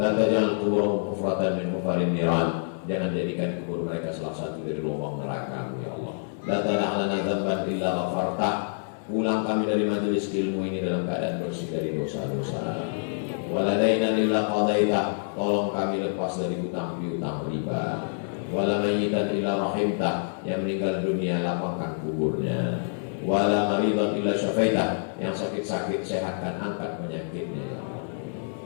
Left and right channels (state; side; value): silent; right; digital silence